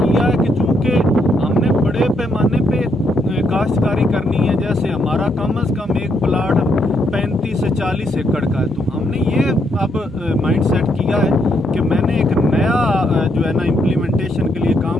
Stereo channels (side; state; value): both; normal; correlation 0.75